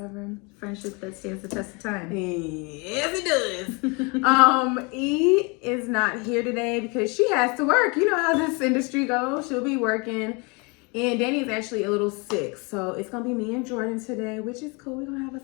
Friendship that stands the test of time. Yes, it does. E is not here today because she has to work. You know how this industry goes. She'll be working. And Danny's actually a little sick, so it's gonna be me and Jordan today, which is cool. We're gonna have us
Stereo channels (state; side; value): quieter; right; 30.1 dB